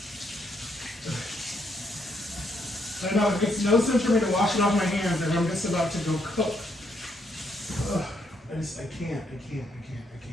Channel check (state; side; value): normal; both; correlation 0.74